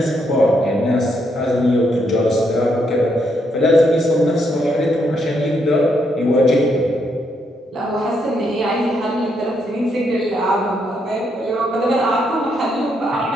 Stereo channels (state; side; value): normal; both; correlation 0.76